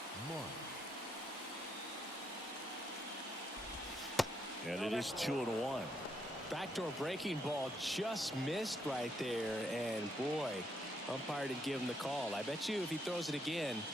And it is 2-1. Backdoor breaking ball just missed right there, and boy, umpire didn't give him the call. I bet you if he throws it again,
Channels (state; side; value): normal; both; correlation 0.76